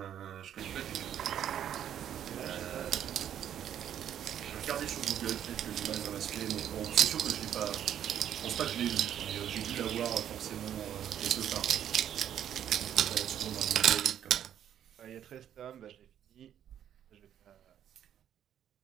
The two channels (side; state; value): left; quieter; 10.0 dB